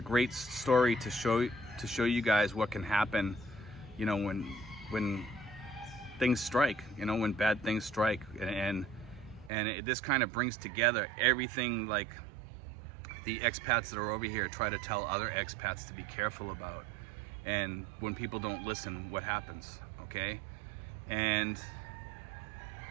story to show you guys what can happen, you know, when things strike, you know, when bad things strike, this kind of brings together everything like the expats that are over here try to tell other expats to be careful about, and when people don't listen, what happens, okay? And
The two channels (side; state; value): left; drops out; at 9.5 s